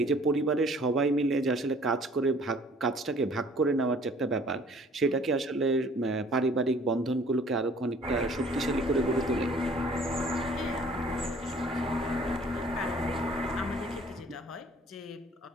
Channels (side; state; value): both; normal; correlation 0.54